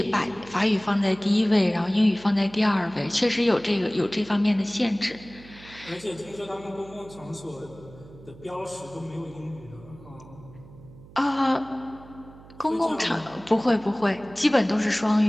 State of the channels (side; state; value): right; noise; hum, 20 dB below the sound